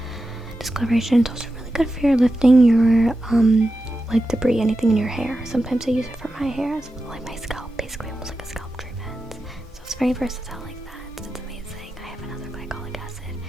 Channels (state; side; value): normal; both; correlation 0.91